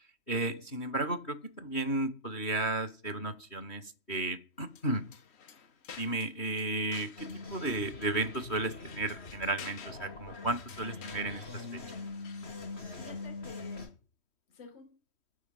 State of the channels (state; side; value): late; right; 3.1 ms